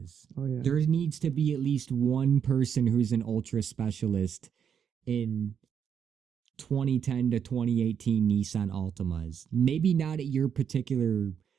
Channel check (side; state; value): left; quieter; 7.7 dB